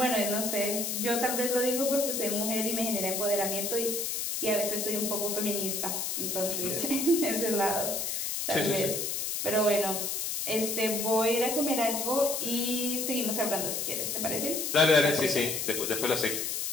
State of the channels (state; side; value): noise; left; hiss, 1 dB below the sound